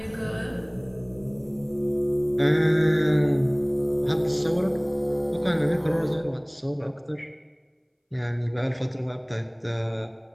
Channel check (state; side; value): identical; both; correlation 1.00